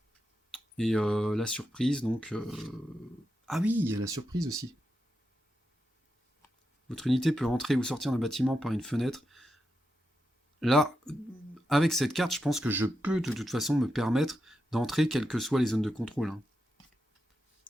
Et la surprise, donc... Ah oui, il y a la surprise aussi. Votre unité peut entrer ou sortir d'un bâtiment par une fenêtre. Là, avec cette carte, je pense que je peux de toute façon me permettre d'entrer quelles que soient les zones de contrôle.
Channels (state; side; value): normal; both; correlation 0.87